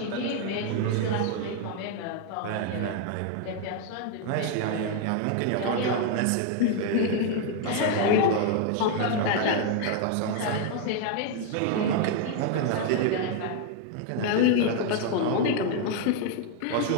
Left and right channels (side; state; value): both; different; correlation 0.00